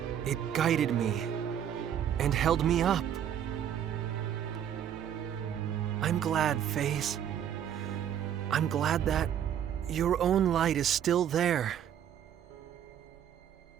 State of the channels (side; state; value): left; quieter; 9.6 dB